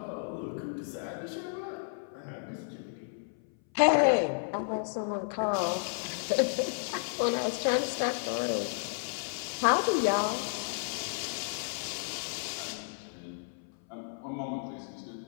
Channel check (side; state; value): right; silent; 56 dB below the other